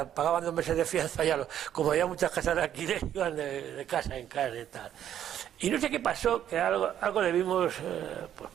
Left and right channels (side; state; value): left; quieter; 10.4 dB